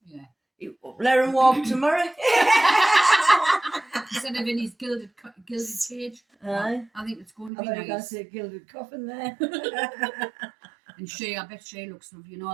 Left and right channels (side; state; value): left; drops out; at 7.5 s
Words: Yeah. Let him walk tomorrow. Instead of in his gilded cage. Aye. I think it's going to I be thought you were going to nice. say gilded coffin there. And I bet she looks lovely. You